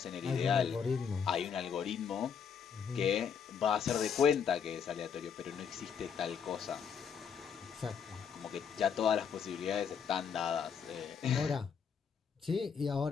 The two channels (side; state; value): right; quieter; 7.0 dB